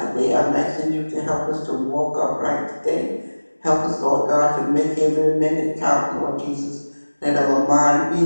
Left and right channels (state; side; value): inverted; both; correlation -1.00